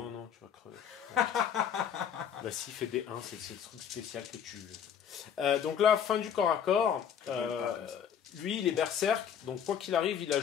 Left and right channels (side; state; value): right; quieter; 8.4 dB